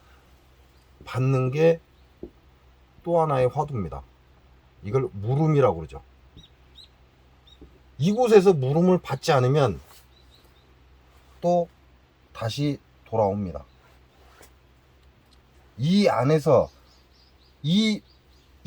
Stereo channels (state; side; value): identical; both; correlation 1.00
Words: 받는 게 또 하나의 화두입니다. 이걸 물음이라고 그러죠. 이곳에서 물음을 받지 않으면 또 다시 돌아옵니다. 이 안에서, 이